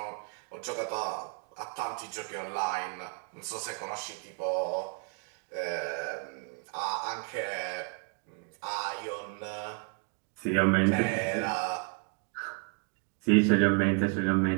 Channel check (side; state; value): left; quieter; 35.1 dB